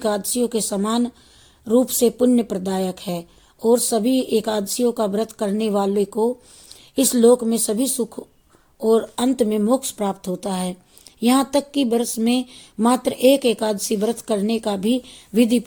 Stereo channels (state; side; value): identical; both; correlation 1.00